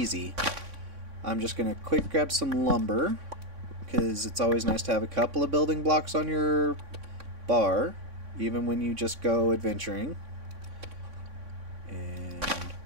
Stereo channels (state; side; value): late; left; 3.6 ms